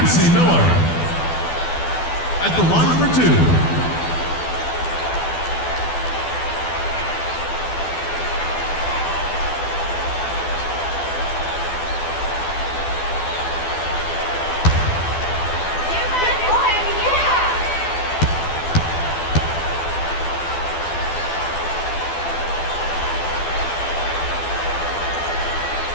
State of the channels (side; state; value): right; late; 12 ms